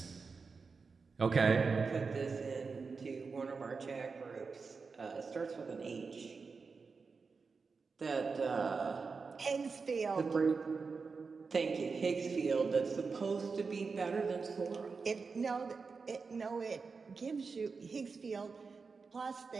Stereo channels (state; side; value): quieter; left; 4.8 dB